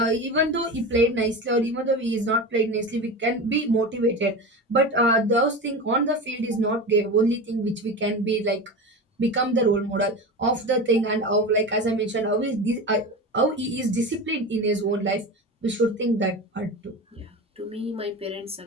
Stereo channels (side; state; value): both; normal; correlation 0.27